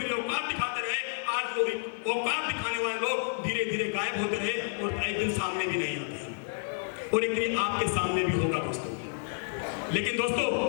औकात दिखाते रहे। आज वो औकात दिखाने वाले लोग धीरे धीरे गायब होते रहे और एक दिन सामने भी नहीं आते और एक दिन आपके सामने भी होगा दोस्तों। लेकिन दोस्तों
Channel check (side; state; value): right; silent; 58 dB below the other